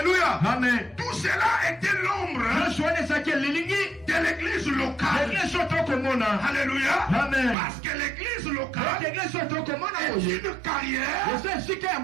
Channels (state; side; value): drops out; left; at 7.6 s